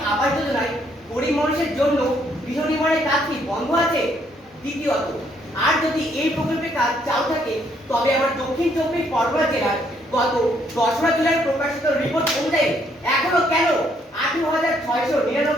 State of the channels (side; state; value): both; normal; correlation 0.70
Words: আবাস যোজনায় গরিব মানুষের জন্য গৃহ নির্মাণের কাজ কি বন্ধ আছে? দ্বিতীয়ত, আর যদি এই প্রকল্পের কাজ চালু থাকে তবে আমার দক্ষিণ 24 পরগনা জেলার গত 10 জুলাই প্রকাশিত রিপোর্ট অনুযায়ী এখনো কেন